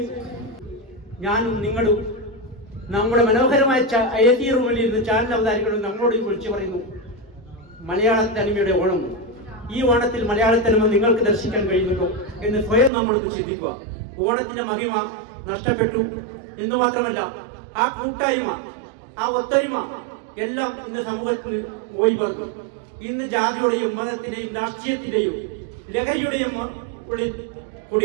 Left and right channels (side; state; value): left; drops out; at 12.9 s